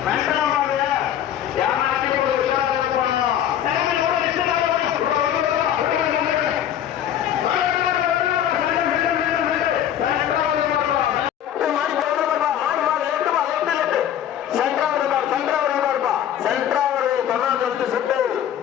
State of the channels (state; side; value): quieter; right; 10.4 dB